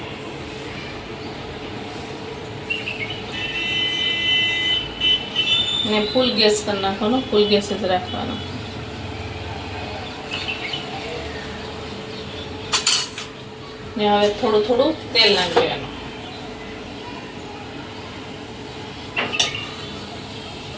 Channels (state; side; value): identical; both; correlation 1.00